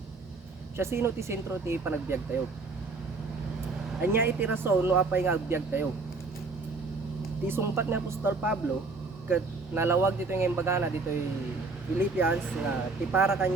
siya sino ti sentro ti panagbiag tayo. Anya iti rason no apay nga agbiag tayo. Ti sumpat ni Apostol Pablo ket nalawag dito ng embagana dito Philippians nga ti para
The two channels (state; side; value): quieter; left; 3.9 dB